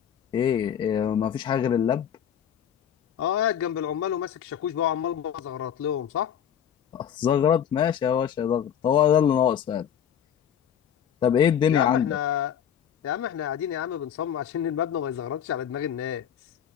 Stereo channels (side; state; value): right; quieter; 9.0 dB